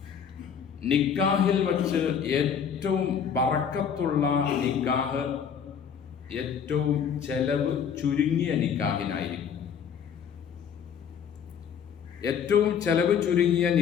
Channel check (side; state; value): right; quieter; 7.5 dB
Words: നിക്കാഹിൽ വച്ച് ഏറ്റവും ബറക്കത്തുള്ള നിക്കാഹ് ഏറ്റവും ചെലവ് ചുരുങ്ങിയ നിക്കാഹിനായിരിക്കും. ഏറ്റവും ചെലവ് ചുരുങ്ങിയ